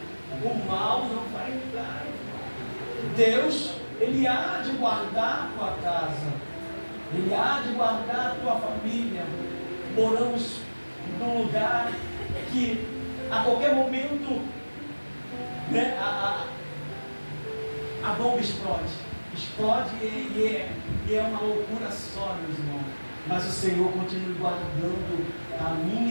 O mal não vai entrar. Deus, Ele há de guardar a tua casa, Ele há de guardar a tua família. Moramos num lugar que a qualquer momento, né, a bomba explode e é uma loucura só, meus irmãos. Mas o Senhor continua guardando a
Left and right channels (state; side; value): inverted; both; correlation -1.00